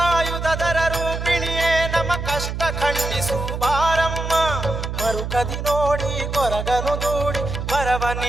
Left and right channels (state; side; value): noise; right; hum, 5 dB below the sound